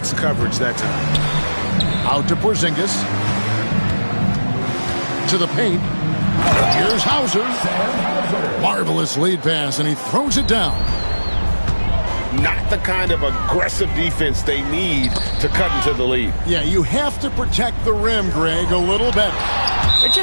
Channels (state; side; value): inverted; both; correlation -1.00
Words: coverage that time. Out to Porzingis. To the paint. Here's Hauser. Marvelous lead pass, and he throws it down. Not the kind of aggressive defense they need to cut into the lead. Yeah, you have to protect the rim, Greg, a little better. They're